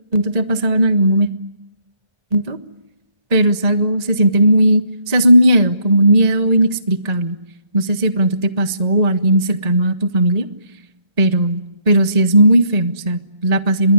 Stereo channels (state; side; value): late; left; 1.8 ms